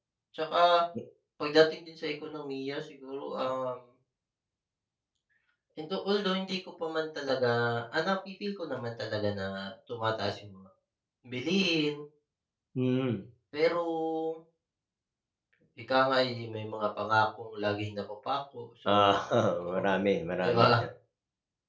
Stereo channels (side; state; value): both; identical; correlation 1.00